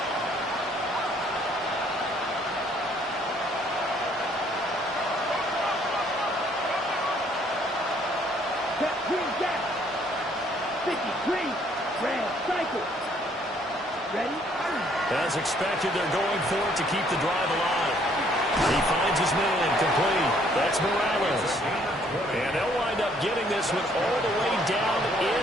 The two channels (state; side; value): normal; both; correlation 0.64